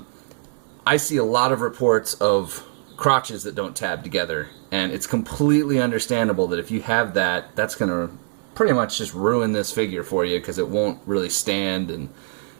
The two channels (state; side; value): silent; left; digital silence